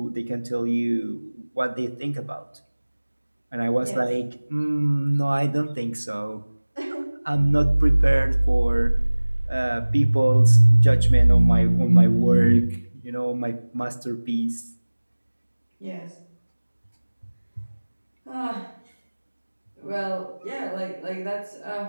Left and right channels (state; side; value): inverted; both; correlation -1.00